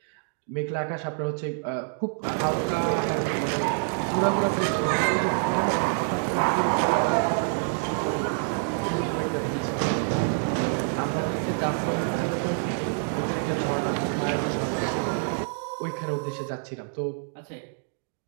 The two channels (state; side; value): silent; left; 60 dB below the other